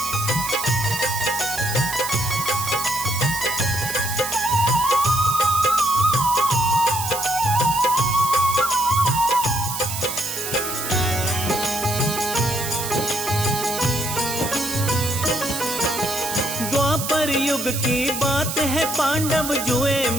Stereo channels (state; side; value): noise; right; hiss, 5 dB below the sound